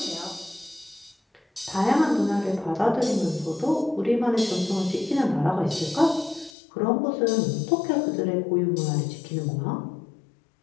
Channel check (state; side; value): drops out; right; at 6.5 s